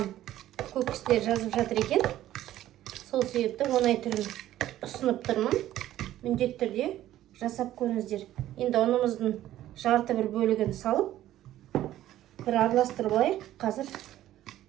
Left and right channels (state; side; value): quieter; left; 13.4 dB